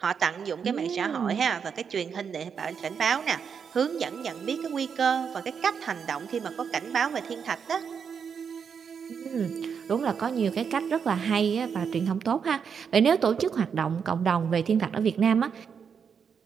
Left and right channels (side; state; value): left; quieter; 6.7 dB